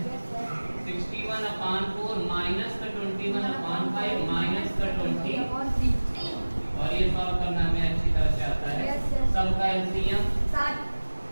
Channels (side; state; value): both; inverted; correlation -1.00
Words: 61 upon 4 माइनस का 21 upon 5 माइनस का 20 और ये सॉल्व करना हमें अच्छी तरह से आता है। सबका एलसीएम